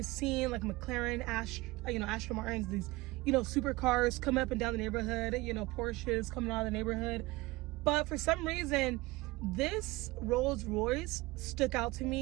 seeing like McLaren, Aston Martins, these, you know, supercars coming up and down the neighborhood, you know, Porsches coming out of the neighborhood. But for some reason, this Rolls Royce stuck out to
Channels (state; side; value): quieter; left; 21.3 dB